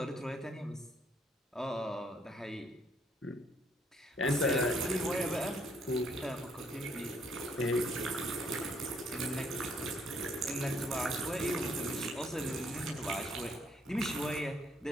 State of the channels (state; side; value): normal; both; correlation 0.67